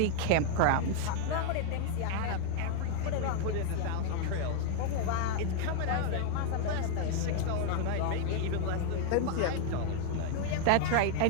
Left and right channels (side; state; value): both; different; correlation 0.00